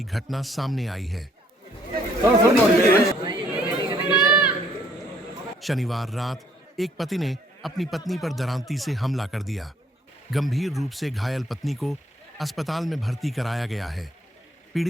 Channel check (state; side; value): normal; both; correlation 0.64